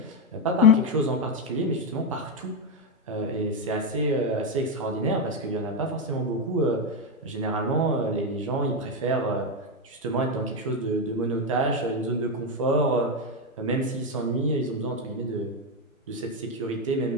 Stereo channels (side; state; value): both; normal; correlation 0.07